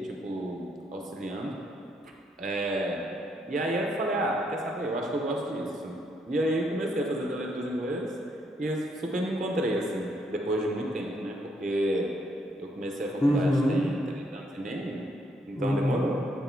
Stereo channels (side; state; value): both; normal; correlation 0.73